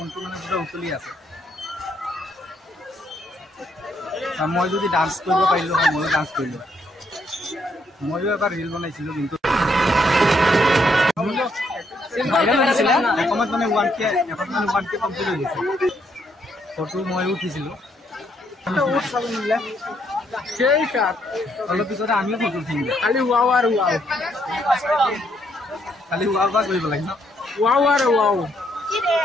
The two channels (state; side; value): normal; both; correlation 0.73